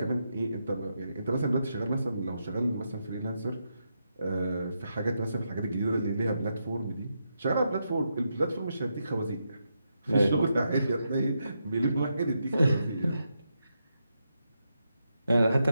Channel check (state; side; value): inverted; both; correlation -0.83